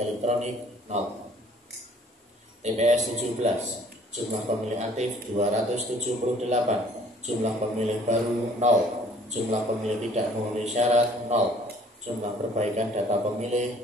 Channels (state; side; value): normal; both; correlation 0.56